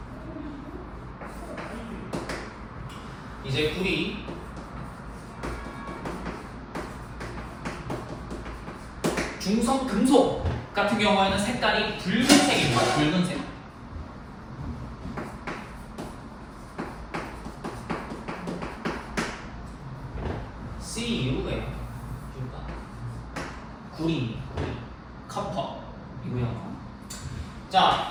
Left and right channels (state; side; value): identical; both; correlation 1.00